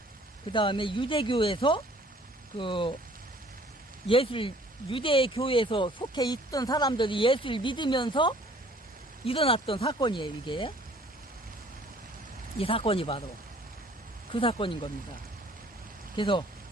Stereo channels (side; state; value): both; normal; correlation 0.55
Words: 그 다음에 유대교에서 그 유대 교회에서 속해 있던 사람들이 예수를 믿으면서 일어났던 사건이에요. 이게 이 사건이 바로 그 사건인 겁니다. 그래서